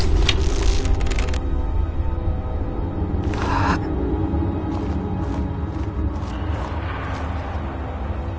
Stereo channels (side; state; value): both; identical; correlation 1.00